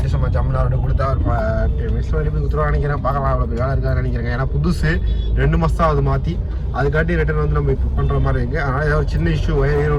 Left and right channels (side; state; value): both; identical; correlation 1.00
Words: சும்மா ஜம்முன்னு அவர்கிட்ட கொடுத்தா ஒரு 10 மினிட்ஸில் வெளியே போய் கொடுத்துருவா நினைக்கிறேன். பார்க்கலாம் அவ்வளோ வேலை இருக்கான்னு நினைக்கிறேன். ஏன்னா புதுசு 2 மாதம் தான் அது மாற்றி. அதுக்காட்டி ரிட்டர்ன் வந்து நம்ம இப்போ பண்ணுற மாதிரி இருக்குது. அதனால் ஏதாவது ஒரு சின்ன இஷ்யூ வயர்